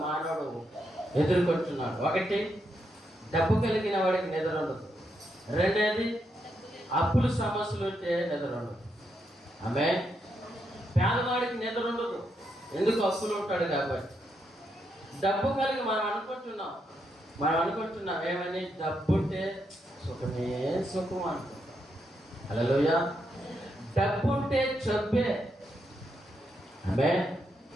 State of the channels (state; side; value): normal; both; correlation 0.80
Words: మానవుడు ఎదుర్కొంటున్నాడు. ఒకటి, డబ్బు కలిగిన వాడికి నిద్ర ఉండదు. రెండేది, అప్పుల సమస్యలు ఉంటే నిద్ర ఉండదు. ఆమేన్. పేదవాడికి నిద్ర ఉండదు, ఎందుకు అప్పులు ఉంటాడు కాబట్టి. డబ్బు కలిగి మనం అనుకుంటున్నాం ఏమని, డబ్బు ఉంటే సుఖమే సుఖం అనుకుంటాం. హల్లెలూయా. డబ్బు ఉంటే జబ్బే. ఆమేన్.